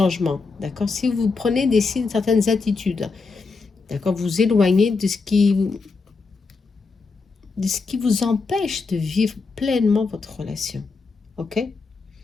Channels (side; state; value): right; quieter; 4.3 dB